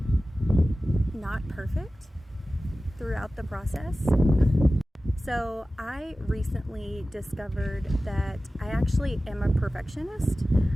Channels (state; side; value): normal; both; correlation 0.96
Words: not perfect throughout the process. So I recently discovered that I actually am a perfectionist,